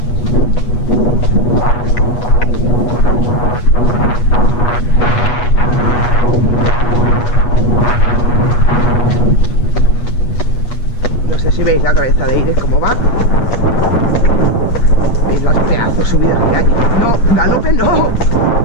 veis la cabeza de Iris cómo va. ¿Veis las pedazos subidas que hay? No, galope no.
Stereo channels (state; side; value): late; right; 8.3 ms